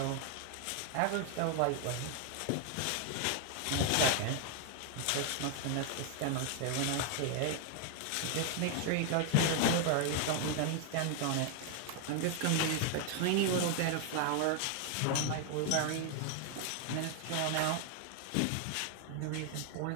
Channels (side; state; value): both; different; correlation 0.00